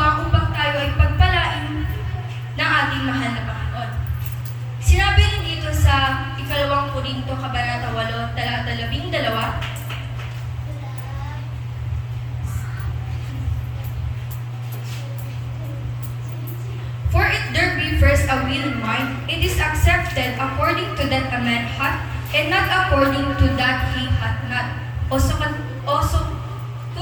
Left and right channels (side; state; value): both; identical; correlation 1.00